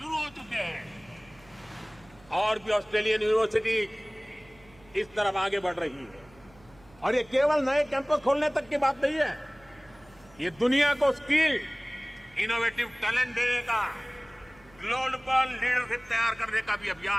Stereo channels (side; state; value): right; noise; hum, 26 dB below the sound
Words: हो चुके हैं और भी ऑस्ट्रेलियन यूनिवर्सिटी इस तरफ आगे बढ़ रही है। और ये केवल नए कैंपस खोलने तक की बात नहीं है, ये दुनिया को स्किल, इनोवेटिव टैलेंट देने का, ग्लोबल लीडरशिप तैयार करने का भी